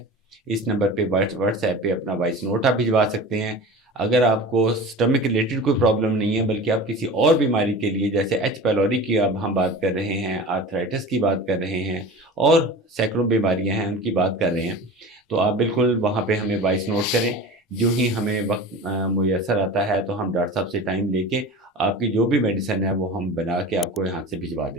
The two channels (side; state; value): both; normal; correlation 0.35